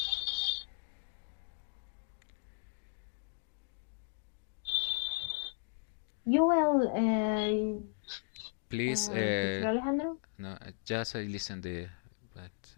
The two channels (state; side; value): silent; right; digital silence